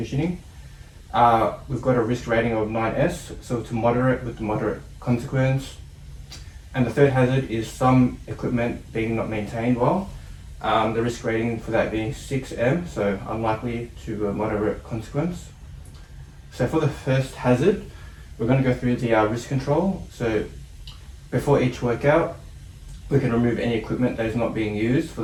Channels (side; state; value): both; identical; correlation 1.00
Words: We've got a risk rating of 9S, so it's moderate with the moderate consequence. And the third hazard is some equipment being not maintained well. The risk rating for that being 6M, so unlikely to a moderate consequence. So for the first hazard, we're going to go through the risk control. So before each workout, we can remove any equipment that is not being used for